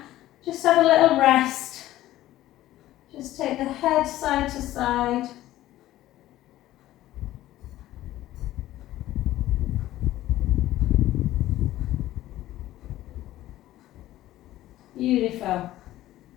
Just have a little rest. Just take the head side to side. Beautiful.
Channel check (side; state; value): right; quieter; 14.8 dB